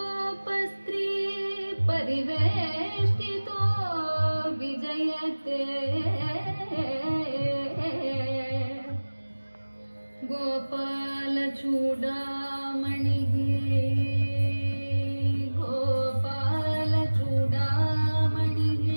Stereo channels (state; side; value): inverted; both; correlation -1.00